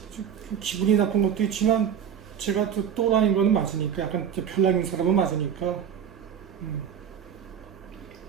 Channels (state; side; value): quieter; left; 8.5 dB